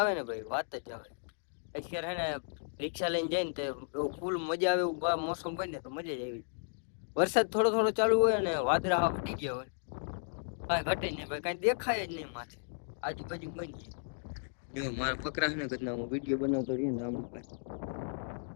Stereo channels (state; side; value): silent; right; digital silence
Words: ને ભાઈ, વાત જ આવે. અત્યારે હે ને રિક્ષા લઈને જાય ને તો એવું ફૂલ મજા આવે એવું મોસમ હોય ને તો મજા જ આવી. વરસાદ થોડો ચાલુ હોય ને વાદળા અડી ગયા હોય, કાંઈ ઘટે નહીં ભાઈ, કાંઈ દેખાય જ નહીં માથે આજુબાજુ બની. જો મારા બકરા છે ને ઘરના હું વિડીયો બનાવતો રહીએ ને આમ ભાઈ